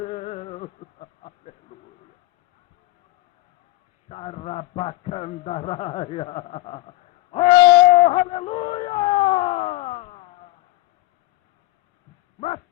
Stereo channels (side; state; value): right; quieter; 19.3 dB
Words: Aleluia. Xarabacandaraia. Oh, aleluia! Mas,